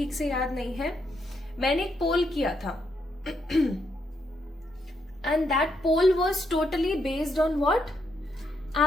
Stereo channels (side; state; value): both; normal; correlation 0.78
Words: से याद नहीं है, मैंने एक पोल किया था and that poll was totally based on what,